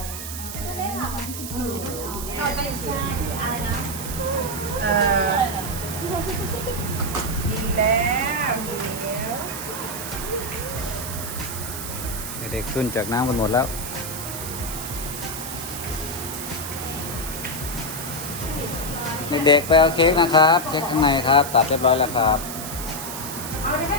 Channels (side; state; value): right; noise; hiss, 8 dB below the sound